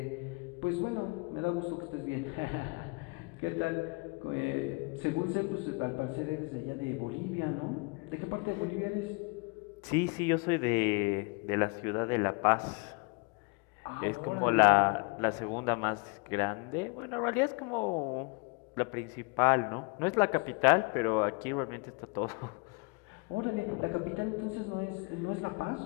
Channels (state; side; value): quieter; right; 30.8 dB